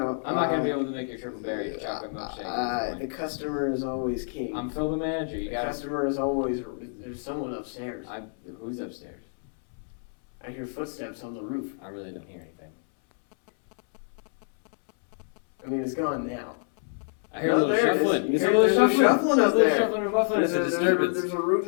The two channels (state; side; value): silent; right; 60 dB below the other